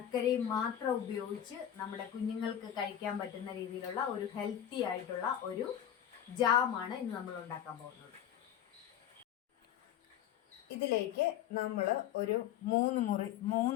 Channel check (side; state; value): right; quieter; 10.5 dB